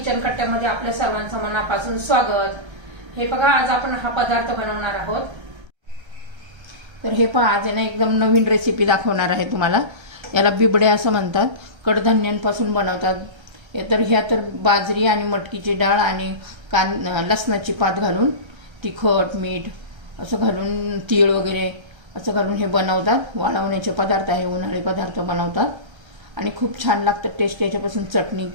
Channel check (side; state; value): left; late; 1.3 ms